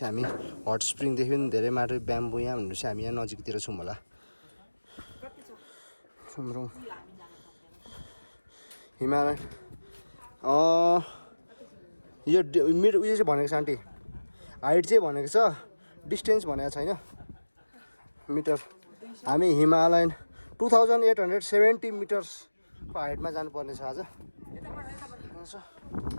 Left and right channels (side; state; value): both; inverted; correlation -1.00